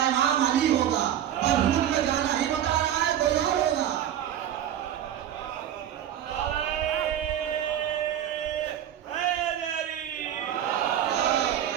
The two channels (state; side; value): quieter; left; 10.7 dB